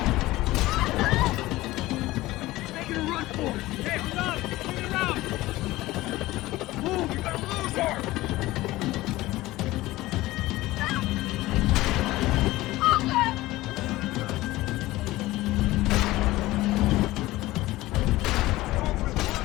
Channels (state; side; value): quieter; right; 18.0 dB